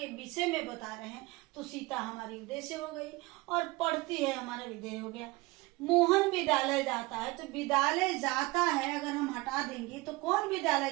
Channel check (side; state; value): left; quieter; 22.6 dB